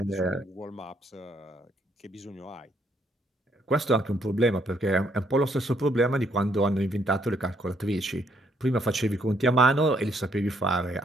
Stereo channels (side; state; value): both; normal; correlation 0.70